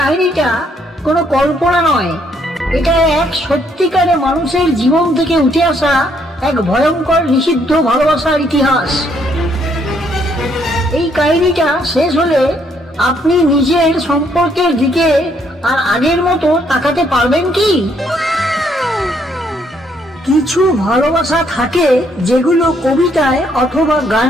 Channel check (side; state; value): both; normal; correlation 0.69